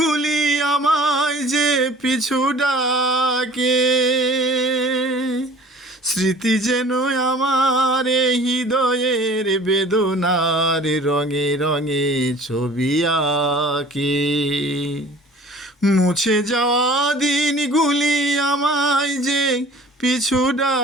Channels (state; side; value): normal; both; correlation 0.47